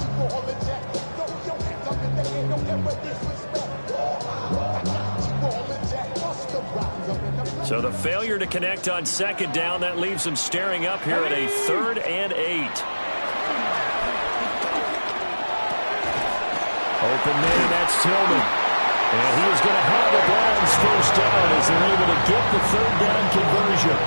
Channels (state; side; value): inverted; both; correlation -1.00